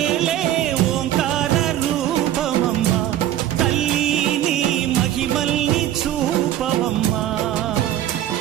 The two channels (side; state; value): left; quieter; 12.3 dB